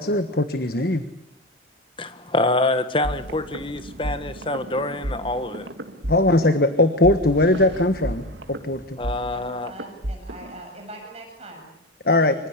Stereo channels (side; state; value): both; normal; correlation 0.22